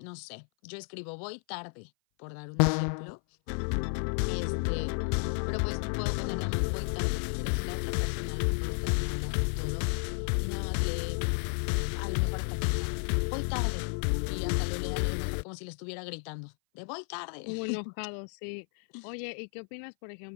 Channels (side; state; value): right; silent; 56 dB below the other